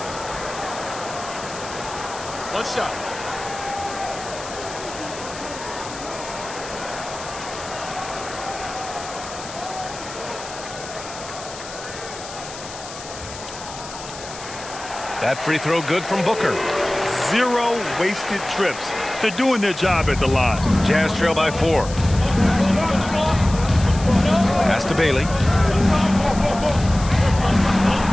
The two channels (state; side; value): noise; left; hiss, 13 dB below the sound